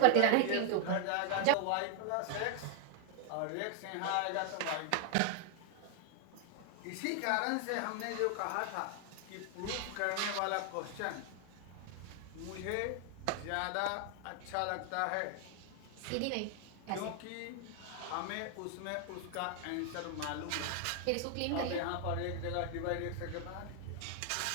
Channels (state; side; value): different; both; correlation 0.00